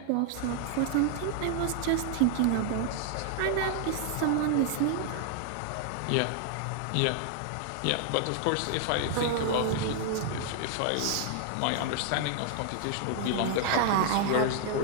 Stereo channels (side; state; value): both; different; correlation 0.00